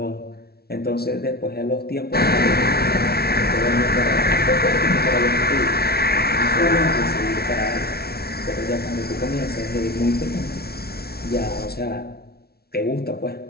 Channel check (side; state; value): right; late; 0.45 ms